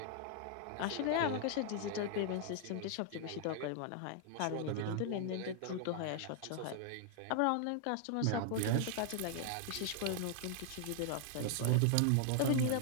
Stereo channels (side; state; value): both; different; correlation 0.00